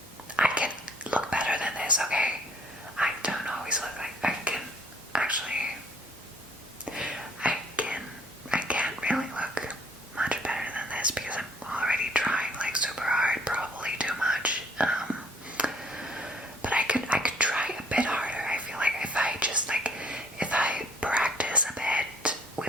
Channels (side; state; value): both; normal; correlation 0.59